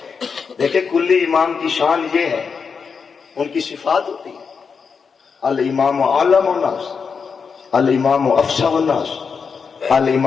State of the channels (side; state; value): right; quieter; 5.7 dB